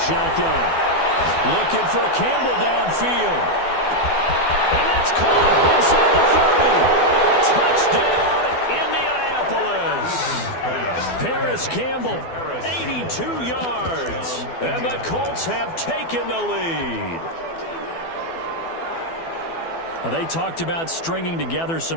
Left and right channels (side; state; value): right; late; 12 ms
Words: Looking for Campbell downfield. And that's caught inside the 30. Touchdown, Indianapolis. Paris Campbell, 82 yards. And the Colts have taken the lead. They talked about stringing together